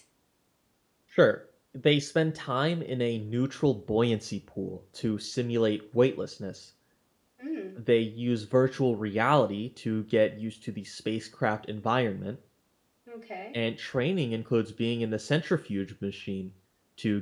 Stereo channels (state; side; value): identical; both; correlation 1.00